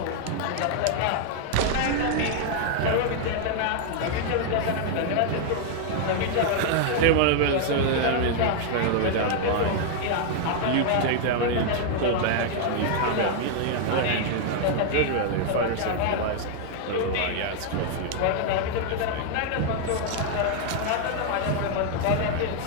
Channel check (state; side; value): different; both; correlation 0.00